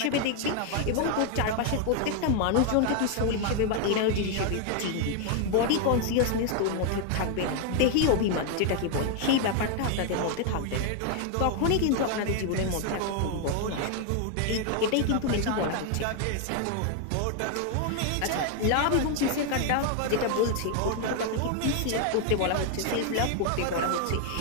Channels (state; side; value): different; both; correlation 0.00